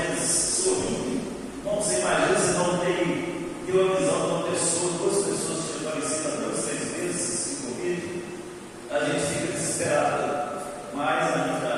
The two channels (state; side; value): identical; both; correlation 1.00